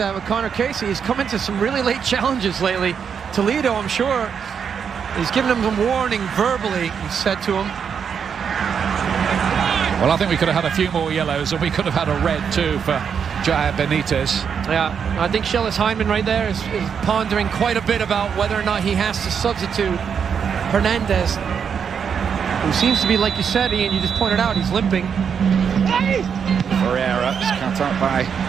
with Connor Casey. He's come into some really late challenges lately. Toledo, I'm sure, he's given him some warning verbally, he said to him. Well, I think we could have had a few more yellows, and we could have had a red too for Jair Benitez. Yeah, I think Shellis Hyndman right there is pondering quite a bit about whether or not he has to substitute Hernandez, who seems to be, like you said, Ian, you just pointed out, he's limping. Ferreira is cut up by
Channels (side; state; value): left; quieter; 7.1 dB